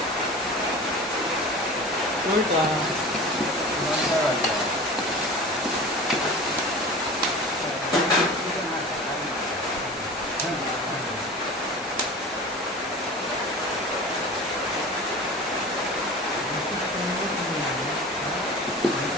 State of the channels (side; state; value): both; normal; correlation 0.36